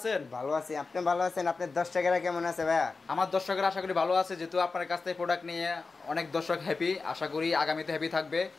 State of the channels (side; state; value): right; quieter; 4.1 dB